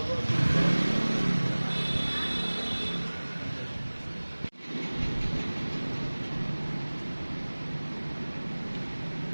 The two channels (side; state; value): both; inverted; correlation -1.00